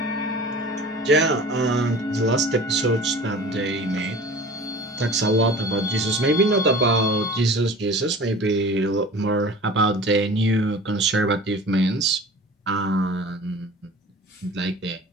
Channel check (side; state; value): both; normal; correlation 0.41